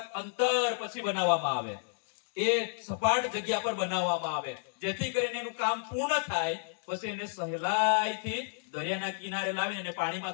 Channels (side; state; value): right; silent; 57 dB below the other